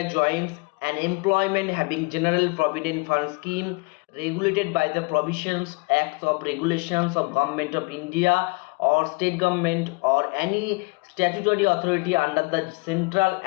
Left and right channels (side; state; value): right; quieter; 28.9 dB